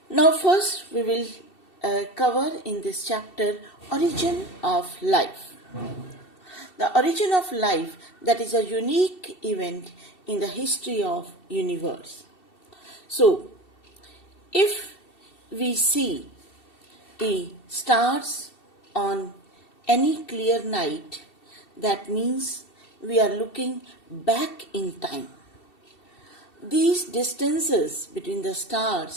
Now first we will cover in this chapter origin of life. The origin of life, that is a unique event in the history of universe. So if we see the stars on any clear night, that means we are looking back in time. These distances between the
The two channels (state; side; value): late; right; 2.7 ms